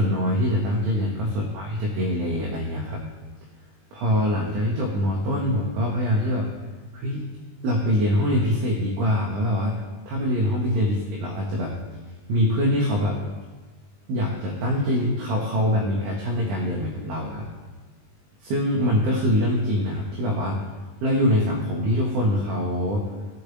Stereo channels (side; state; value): left; late; 20 ms